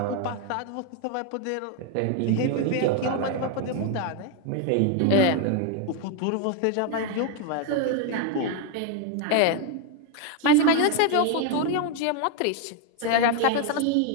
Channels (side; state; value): both; different; correlation 0.01